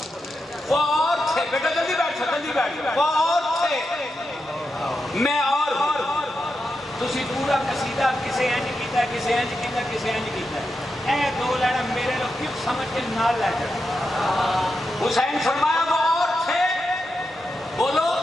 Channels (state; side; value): normal; both; correlation 0.87